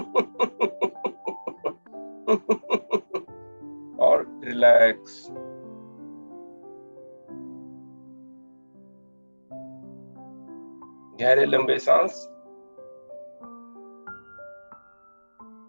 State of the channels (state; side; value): inverted; both; correlation -1.00